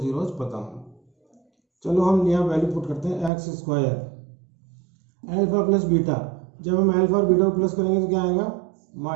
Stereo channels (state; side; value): drops out; left; at 3.3 s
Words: पता हो। चलो हम यहाँ वैल्यू पुट करते हैं x square alpha plus beta. जब हम अल्फा और बीटा को प्लस करेंगे तो क्या आएगा?